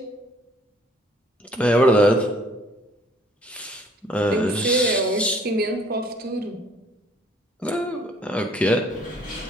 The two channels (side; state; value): both; normal; correlation 0.58